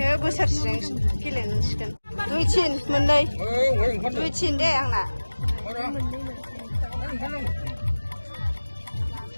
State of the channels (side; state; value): both; inverted; correlation -1.00